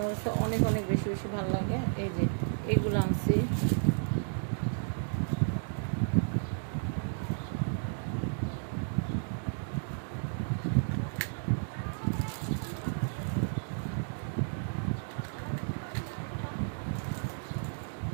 কাছে অনেক অনেক বেশি বেশি ভালো লাগে। এই যে এগুলো আনছি।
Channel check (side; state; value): left; silent; digital silence